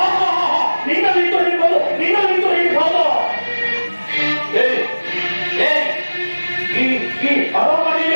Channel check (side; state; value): both; inverted; correlation -1.00